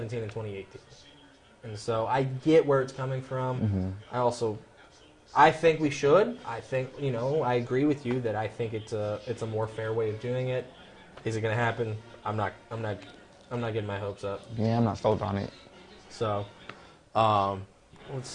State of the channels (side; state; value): both; identical; correlation 1.00